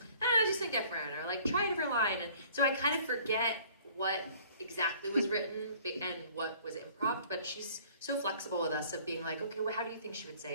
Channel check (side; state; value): both; inverted; correlation -0.54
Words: just think different, or like try a different line. And so I kind of forget what exactly was written and what was improv, but she's so flexible with us of being like, okay, well, how do you think she would